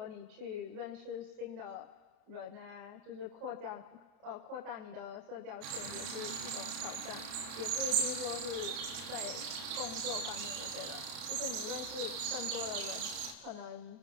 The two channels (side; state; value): left; late; 30 ms